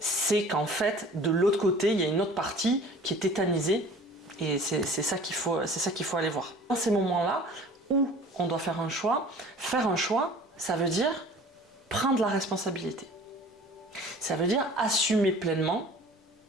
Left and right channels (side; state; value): both; normal; correlation 0.46